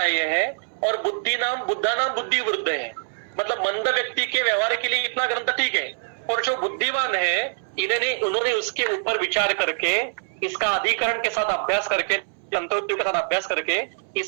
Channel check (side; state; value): left; silent; 63 dB below the other